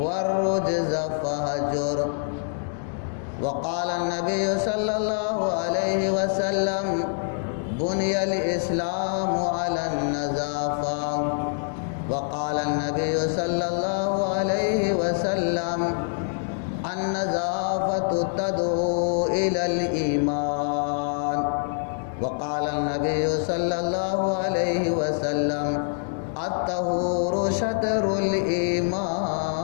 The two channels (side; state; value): right; silent; digital silence